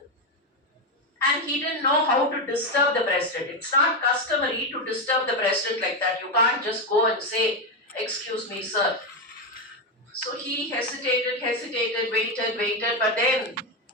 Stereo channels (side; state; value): both; normal; correlation 0.09